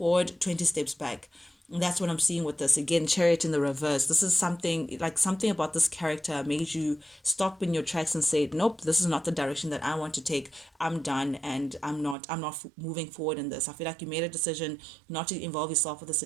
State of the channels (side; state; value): left; drops out; at 12.2 s